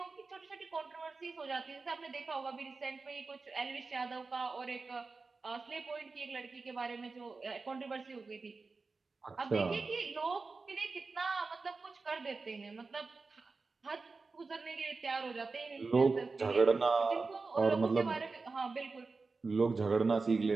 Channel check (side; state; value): left; quieter; 4.1 dB